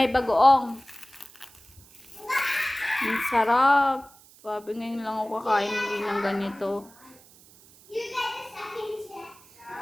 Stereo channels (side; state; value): right; noise; hiss, 25 dB below the sound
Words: bagoong. Ang sarap. Sabi ngayon lang ako kakain ng ganito.